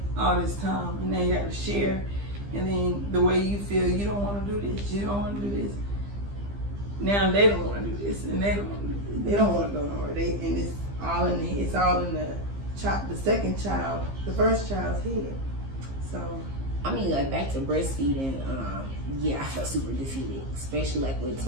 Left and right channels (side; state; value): left; late; 15 ms